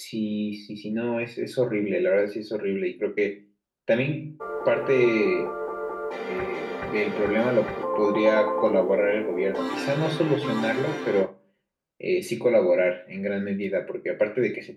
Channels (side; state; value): both; identical; correlation 1.00